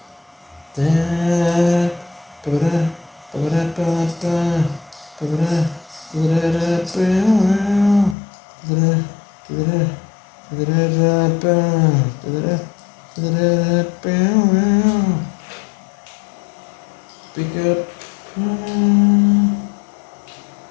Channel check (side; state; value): right; drops out; at 8.2 s